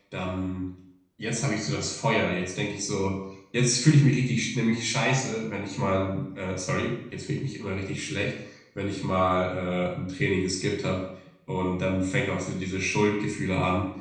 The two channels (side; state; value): both; identical; correlation 1.00